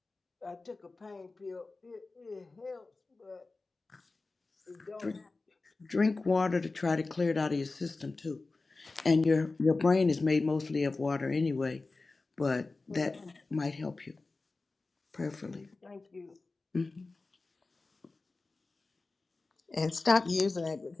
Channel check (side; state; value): right; quieter; 3.6 dB